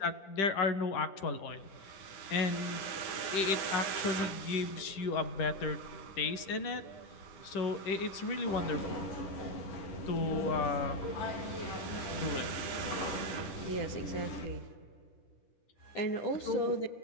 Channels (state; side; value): late; right; 10 ms